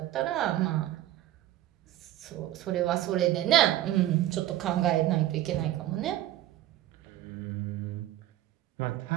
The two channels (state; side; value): quieter; left; 13.9 dB